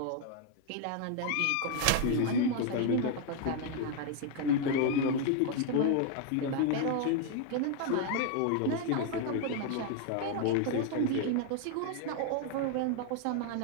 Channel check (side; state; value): both; different; correlation 0.00